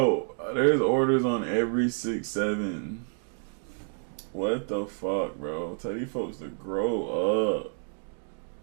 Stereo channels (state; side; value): silent; left; 55 dB below the other